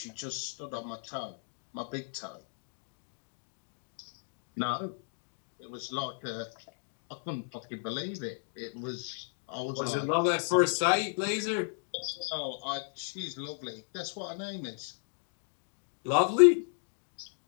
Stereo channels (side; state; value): right; silent; digital silence